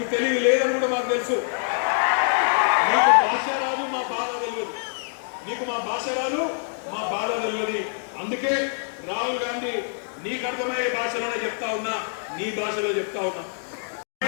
తెలుగు లేదని కూడా మాకు తెలుసు, నీకు భాష రాదు మా బాధ తెలియదు, నీకు మా భాష రాదు మా బాధ తెలియదు. అందుకే రాహుల్ గాంధీ నీకు అర్థమయ్యే భాషలోనే చెప్తా ఉన్నా, నీ భాషలో చెప్తా ఉన్నా.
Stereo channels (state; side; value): silent; right; digital silence